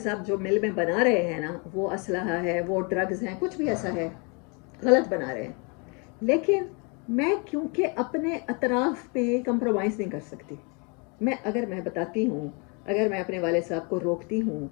صاحب جو مل میں بنا رہے ہیں نا، وہ اسلحہ ہے، وہ ڈرگز ہیں، کچھ بھی ایسا ہے، غلط بنا رہے ہیں، لیکن میں کیونکہ اپنے اطراف پہ کمپرومائز نہیں کر سکتی، اگر میں بتاتی ہوں، اگر میں اپنے والد صاحب کو روکتی ہوں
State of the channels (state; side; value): quieter; right; 33.2 dB